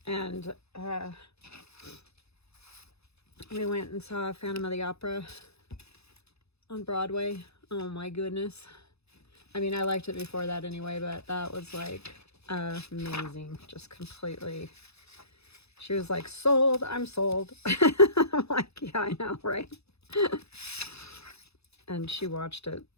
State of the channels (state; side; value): late; right; 0.79 ms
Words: And we went and saw Phantom of the Opera on Broadway. Oh my goodness. I mean, I liked it before that anyway, but that was like amazing. Just completely. She was like, sold, I'm sold. I'm like, yeah, I know, right? And she watched it,